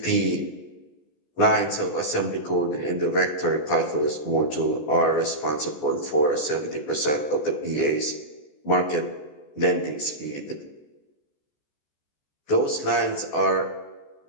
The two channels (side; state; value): right; late; 14 ms